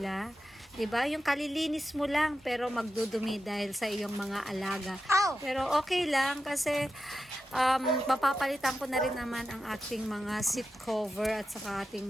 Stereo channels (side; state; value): both; normal; correlation 0.90